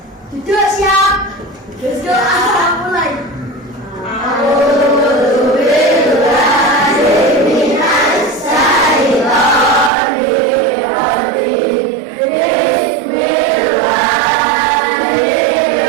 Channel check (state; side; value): drops out; left; at 9.9 s